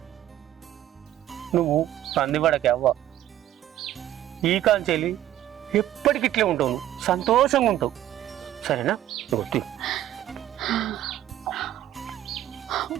నువ్వు సంధిపడకే అవ్వ. ఈ కాంచెలి ఎప్పటికి ఇట్లే ఉంటావు, నువ్వు సంతోషంగా ఉంటావు. సరేనా? నువ్వు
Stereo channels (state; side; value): quieter; left; 12.7 dB